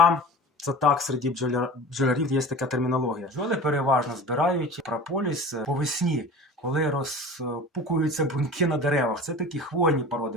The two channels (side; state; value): both; normal; correlation 0.36